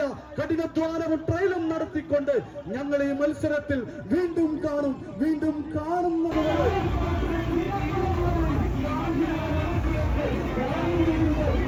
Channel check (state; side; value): identical; both; correlation 1.00